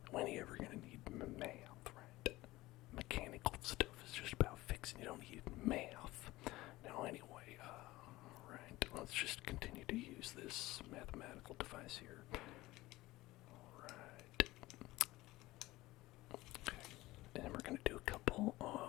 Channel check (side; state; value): right; quieter; 18.6 dB